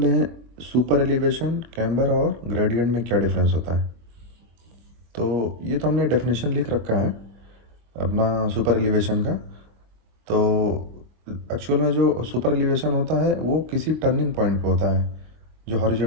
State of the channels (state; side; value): late; left; 24 ms